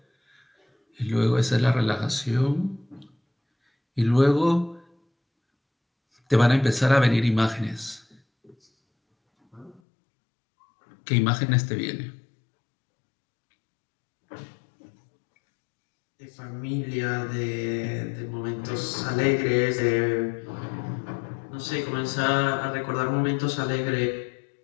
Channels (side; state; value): right; drops out; at 9.8 s